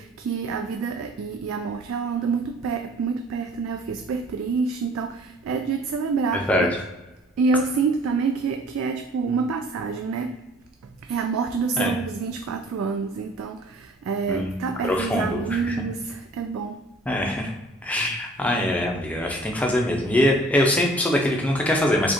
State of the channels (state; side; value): normal; both; correlation 0.53